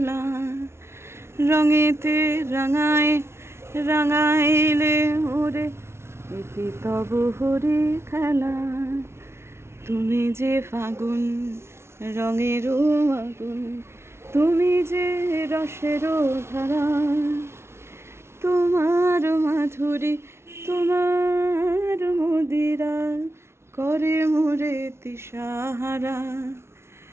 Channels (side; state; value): left; late; 0.12 ms